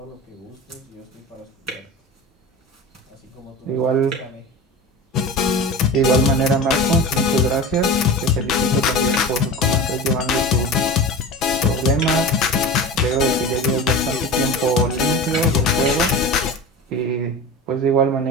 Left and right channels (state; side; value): normal; both; correlation 0.31